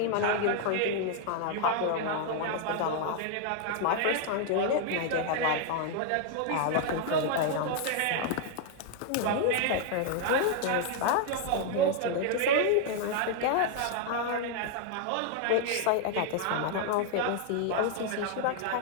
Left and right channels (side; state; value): both; different; correlation 0.00